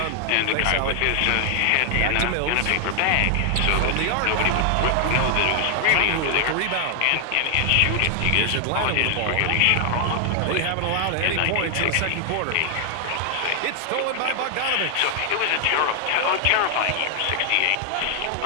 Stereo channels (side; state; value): both; different; correlation 0.00